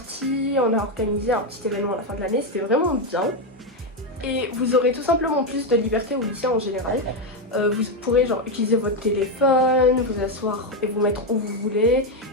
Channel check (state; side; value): normal; both; correlation 0.06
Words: on a organisé un petit événement à la fin de l'année, c'était vraiment bien. Et vous aurez tout simplement plus de liberté au lycée en général. Vous pourrez genre utiliser votre téléphone, vous asseoir et vous mettre où vous voulez.